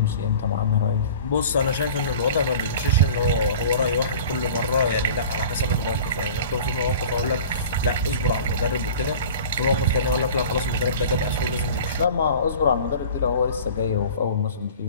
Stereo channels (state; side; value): inverted; both; correlation -0.41